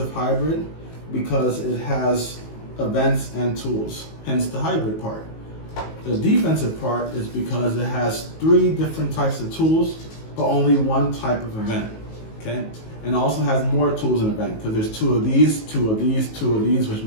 hybrid, because it has events and tools, hence the hybrid part. The defensive part is because it has 3 different types of tools, but only 1 type of event, okay? And it also has more tools in event, because there's 2 of these, 2 of these, 2 of these, which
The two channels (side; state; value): right; late; 19 ms